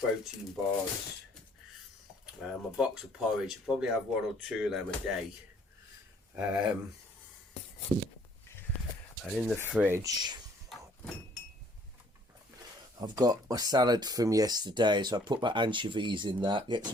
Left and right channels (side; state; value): both; normal; correlation 0.60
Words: bars, a box of porridge. I probably have 1 or 2 of them a day. And in the fridge I've got my salad from yesterday, so I put my anchovies in that, get